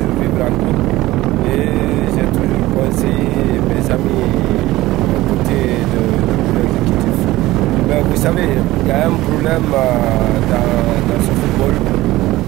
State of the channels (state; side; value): quieter; left; 17.5 dB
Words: vivre en groupe. Et j'ai toujours conseillé mes amis à côté de l'exécutif. Mais vous savez, il y a un problème dans ce football.